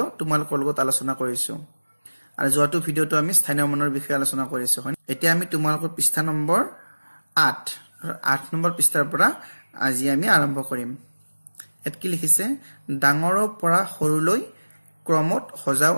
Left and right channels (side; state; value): both; inverted; correlation -1.00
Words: তোমালোকৰ লগত আলোচনা কৰিছো আৰু যোৱাটো ভিডিঅ'টো আমি স্থানীয় মানৰ বিষয়ে আলোচনা কৰিছো। এতিয়া আমি তোমালোকৰ পৃষ্ঠা নম্বৰ 8 নম্বৰ পৃষ্ঠাৰ পৰা আজি আমি আৰম্ভ কৰিম। ইয়াত কি লিখিছে? ডাঙৰৰ পৰা সৰুলৈ ক্ৰমত সজাও